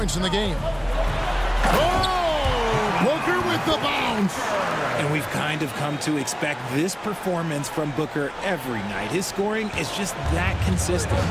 in the game. Oh! Booker with the bounce. And we've kind of come to expect this performance from Booker every night. His scoring is just that consistent.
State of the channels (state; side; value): identical; both; correlation 1.00